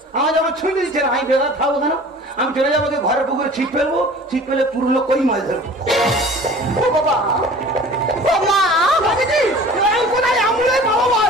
আমার যখন ছুটি দিচ্ছে না, আমি বেকার থাকবো কেন? আমি চলে যাবো ঘরের পুকুরে ছিপ ফেলবো, ছিপ ফেলে পুরনো কই মাছ ধরবো। ও বাবা ও মা দেখেছি আমি কোথায় অ্যাম্বুলেন্স পাবো বল?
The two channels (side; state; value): both; normal; correlation 0.44